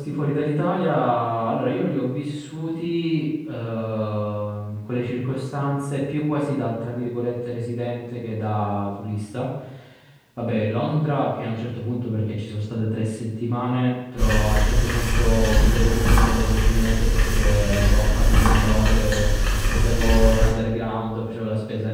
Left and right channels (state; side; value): identical; both; correlation 1.00